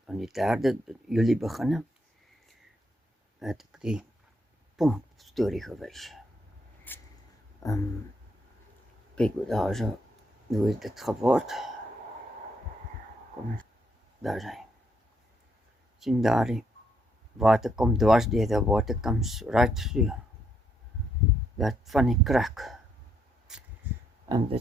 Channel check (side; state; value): both; normal; correlation 0.74